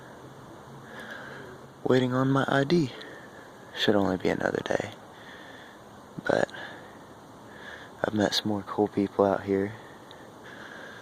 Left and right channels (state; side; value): identical; both; correlation 1.00